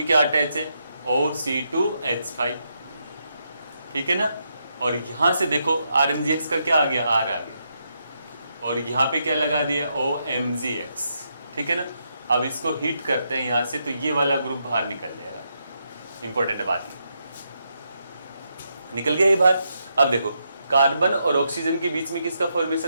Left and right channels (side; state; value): both; inverted; correlation -0.81